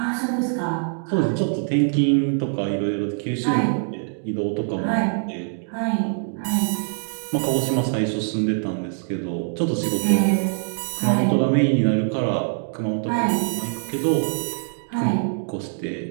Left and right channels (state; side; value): silent; left; digital silence